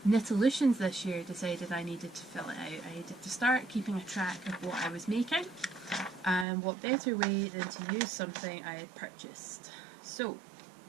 Knitolutions this year, decided I needed to fill it out. I needed to start keeping a track of what I was making, and what better way than to use something I had purchased. So,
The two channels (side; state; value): left; drops out; at 6.5 s